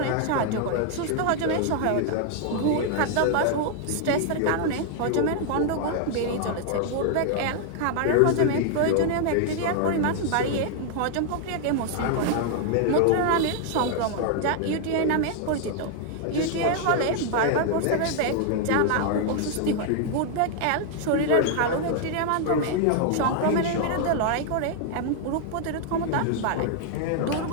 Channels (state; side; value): different; both; correlation 0.00